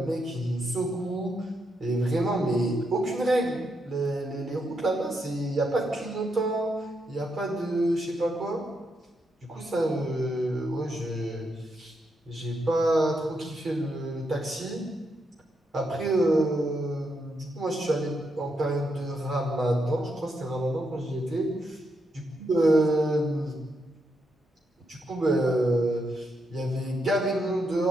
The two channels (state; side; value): normal; both; correlation 0.81